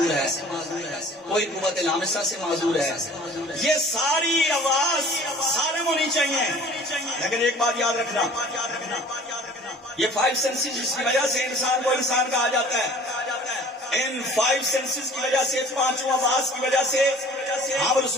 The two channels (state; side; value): normal; both; correlation 0.48